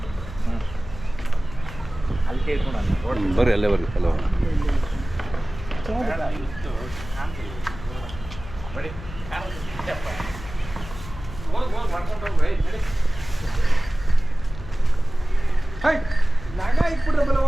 ಅಲ್ಲಿ ಕೇಳ್ಕೊಂಡು ನಾನು ಬರ್ರಿ ಅಲ್ಲೇ ಬರ್ರಿ ಅಲ್ಲ ಬರೀ ನಾಗ ಇಟ್ಬಿಟ್ರೆ ಬಲ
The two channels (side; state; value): left; noise; hum, 13 dB below the sound